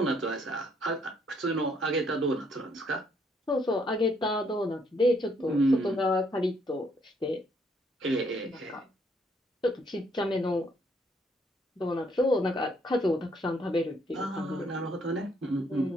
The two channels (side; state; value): both; normal; correlation 0.69